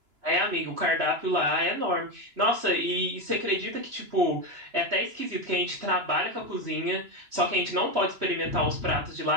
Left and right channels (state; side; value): late; left; 2.9 ms